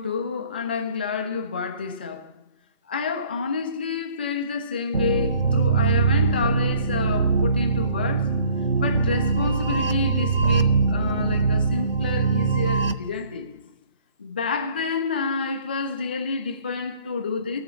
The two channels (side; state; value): both; inverted; correlation -0.56